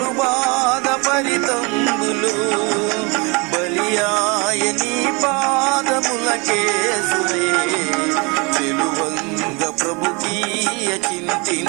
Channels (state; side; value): quieter; left; 28.9 dB